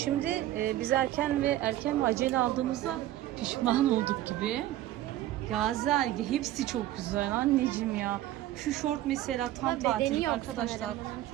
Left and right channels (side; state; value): left; quieter; 14.1 dB